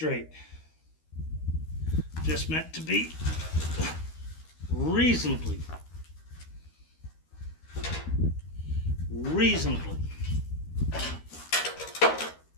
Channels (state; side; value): late; right; 13 ms